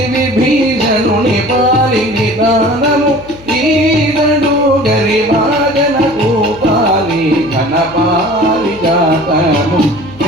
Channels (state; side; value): noise; left; hum, 21 dB below the sound